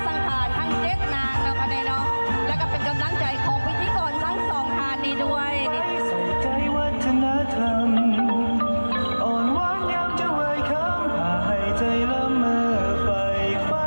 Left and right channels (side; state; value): both; inverted; correlation -1.00